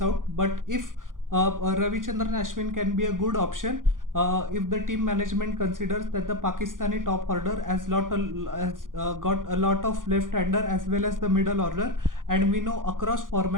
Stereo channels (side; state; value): left; late; 0.89 ms